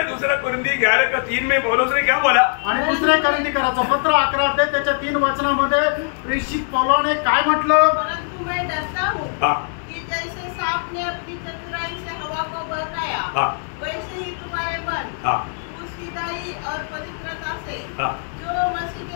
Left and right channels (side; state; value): right; silent; 65 dB below the other